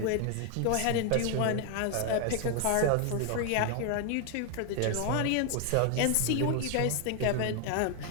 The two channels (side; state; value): both; different; correlation 0.01